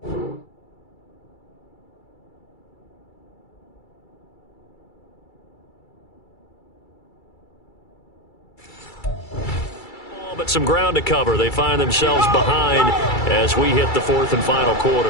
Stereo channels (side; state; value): right; late; 2.3 ms